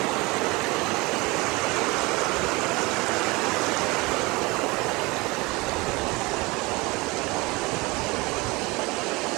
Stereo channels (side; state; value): left; quieter; 24.1 dB